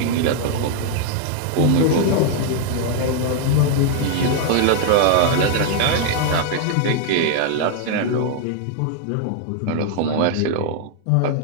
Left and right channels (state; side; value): different; both; correlation 0.00